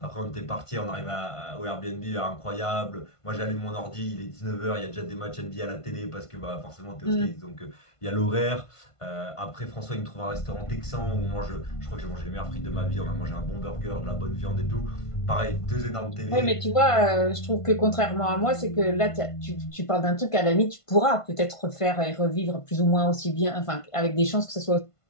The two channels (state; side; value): late; right; 1.5 ms